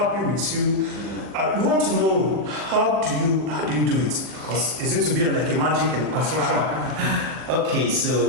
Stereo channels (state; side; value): late; left; 40 ms